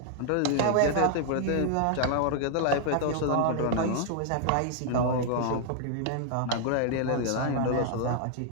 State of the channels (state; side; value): different; both; correlation 0.00